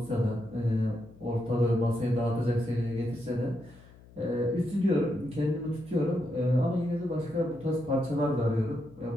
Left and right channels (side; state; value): left; noise; hum, 23 dB below the sound